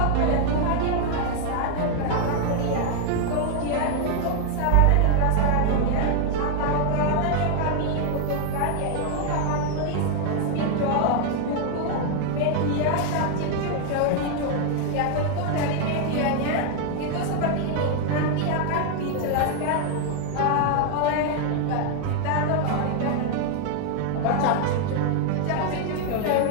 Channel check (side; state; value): both; different; correlation 0.00